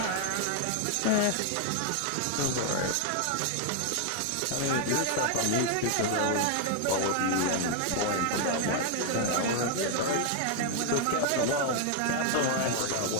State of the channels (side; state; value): both; different; correlation 0.00